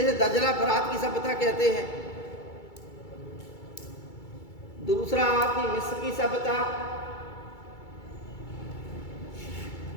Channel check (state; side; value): late; right; 2.3 ms